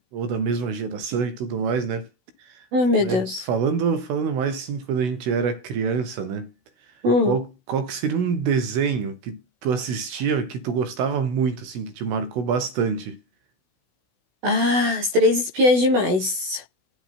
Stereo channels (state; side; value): late; left; 16 ms